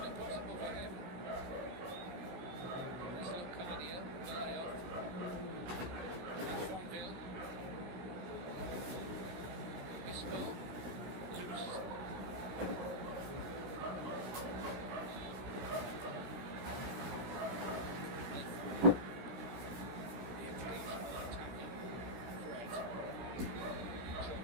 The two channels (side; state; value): left; late; 16 ms